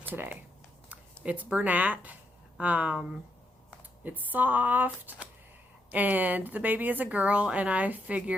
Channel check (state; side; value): normal; both; correlation 0.79